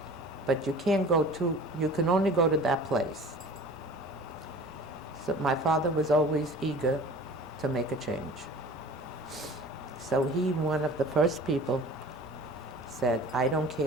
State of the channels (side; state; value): both; normal; correlation 0.42